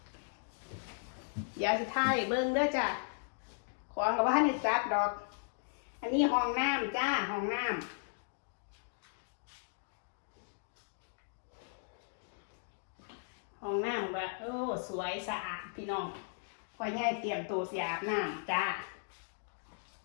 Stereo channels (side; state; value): right; silent; digital silence